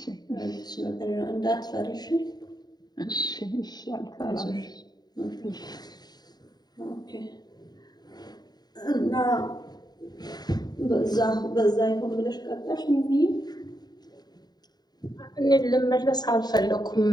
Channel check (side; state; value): right; late; 0.20 ms